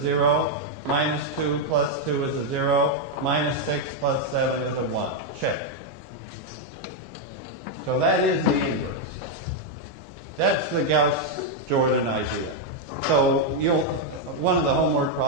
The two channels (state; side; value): normal; both; correlation 0.00